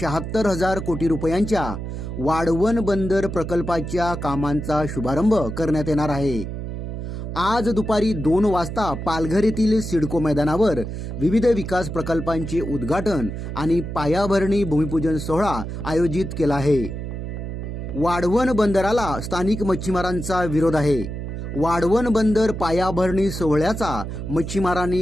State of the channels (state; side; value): noise; right; hum, 6 dB below the sound